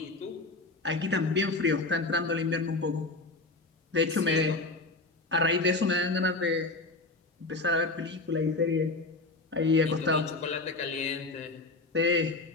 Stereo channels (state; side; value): quieter; right; 3.2 dB